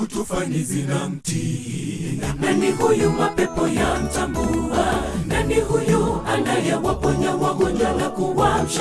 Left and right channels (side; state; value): both; identical; correlation 1.00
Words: tufani zinamtii? Nani huyu mapepo yamtambua? Nani huyu anayewaponya wagonjwa na